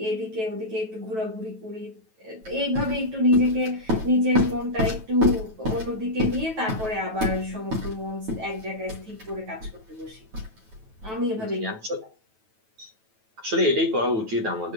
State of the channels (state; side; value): late; left; 9.2 ms